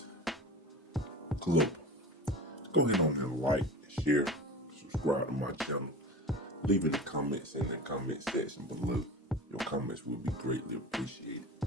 club. Go ahead on and like, share, subscribe to my channel. Leave in the comments in the comment section below. Your comments will be greatly appreciated.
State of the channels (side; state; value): both; normal; correlation 0.34